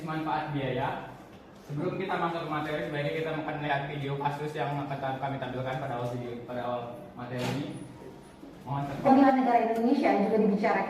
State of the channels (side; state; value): both; identical; correlation 1.00